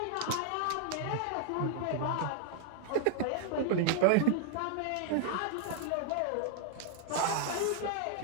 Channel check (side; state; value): both; different; correlation -0.01